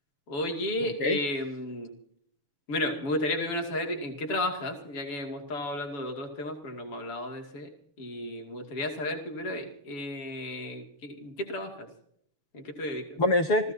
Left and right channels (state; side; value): late; right; 7.1 ms